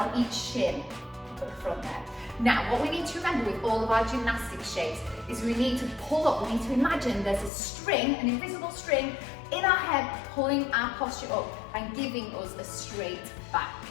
each shin at the front there. Now what we need to remember with all of our gymnastics shapes is we need to pull up, we need to imagine there's a string, an invisible string in our head pulling our posture up and giving us a straight back,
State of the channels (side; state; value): right; drops out; at 7.5 s